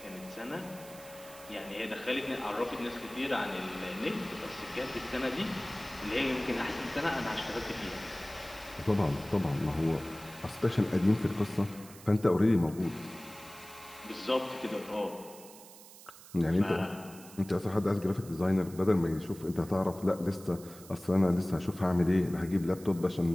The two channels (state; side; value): noise; right; hiss, 19 dB below the sound